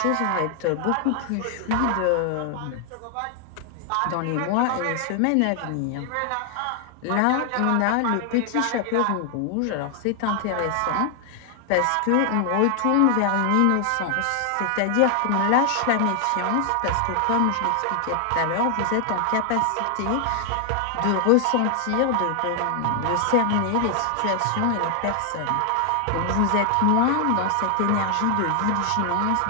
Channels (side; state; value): both; different; correlation 0.00